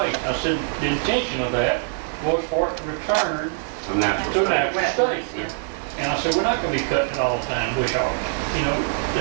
I said, the intention of that was for it to return A natural to a state. natural state. And I said, we're not gonna be cutting it all the time, bush hog. You know,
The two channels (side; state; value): left; silent; 63 dB below the other